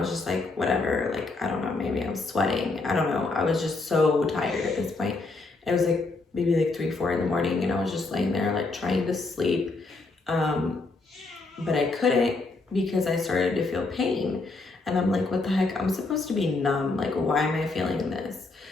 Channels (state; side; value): quieter; right; 3.5 dB